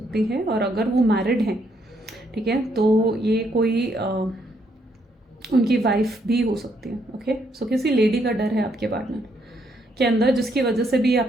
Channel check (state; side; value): normal; both; correlation 0.73